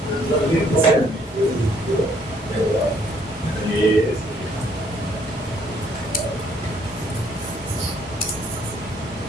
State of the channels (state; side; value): normal; both; correlation 0.65